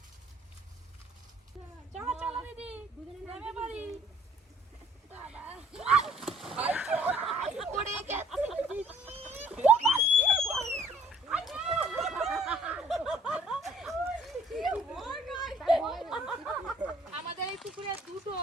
চলো চলো দিদি, নেমে পড়ি। বাবা পড়ে গেছে। আমাদের এই পুকুরে দুটো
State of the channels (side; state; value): both; normal; correlation 0.58